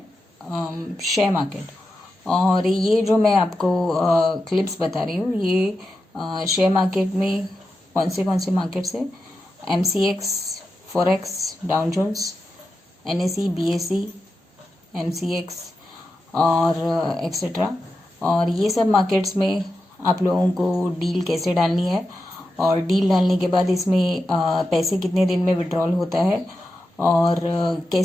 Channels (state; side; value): normal; both; correlation 0.89